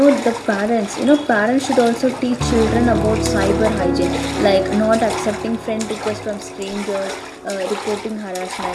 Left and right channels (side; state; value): both; identical; correlation 1.00